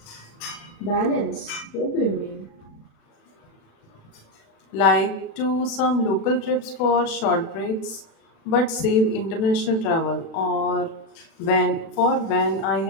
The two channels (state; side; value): late; right; 36 ms